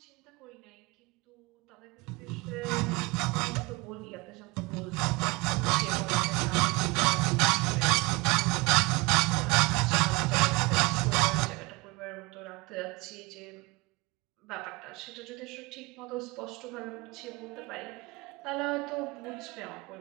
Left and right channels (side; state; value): left; quieter; 25.1 dB